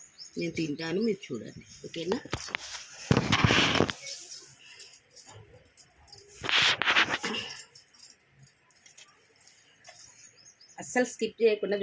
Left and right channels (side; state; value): both; identical; correlation 1.00